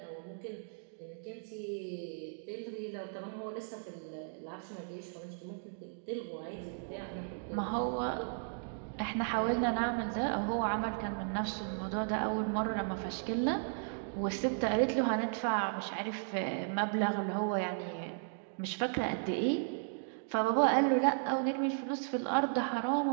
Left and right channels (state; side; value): silent; left; digital silence